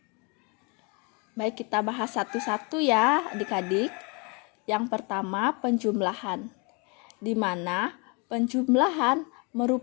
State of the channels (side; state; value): right; quieter; 31.2 dB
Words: Baik, kita bahas satu-satu ya adik-adik. Yang pertama, penjumlahan, di mana penjumlahan